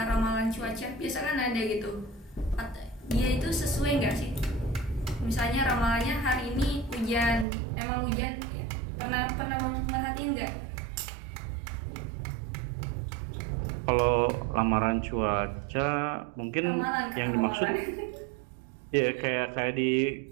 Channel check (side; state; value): left; drops out; at 7.5 s